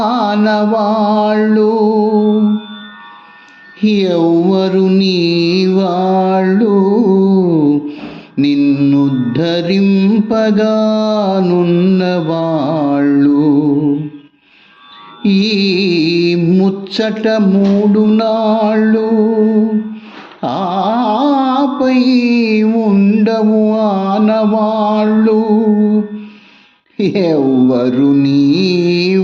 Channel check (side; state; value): both; identical; correlation 1.00